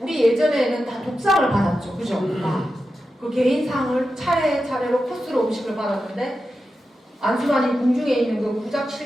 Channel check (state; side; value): normal; both; correlation 0.90